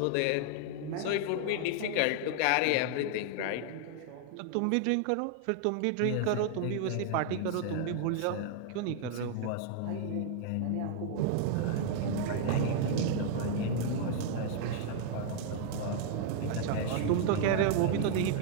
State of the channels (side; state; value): both; different; correlation 0.00